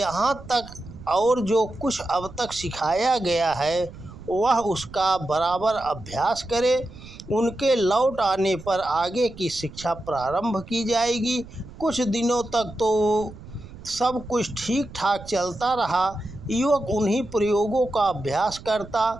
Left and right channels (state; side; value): noise; right; rumble, 16 dB below the sound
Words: तक और जो कुछ अब तक सिखाया गया है वह उसका बराबर अभ्यास करे। उनके लौट आने पर आगे की शिक्षा प्रारंभ की जाएगी। कुछ दिनों तक तो सब कुछ ठीक ठाक चलता रहा। युवक उन्हीं प्रयोगों का अभ्यास